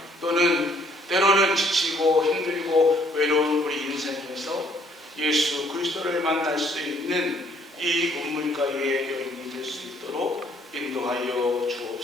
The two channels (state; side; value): normal; both; correlation 0.63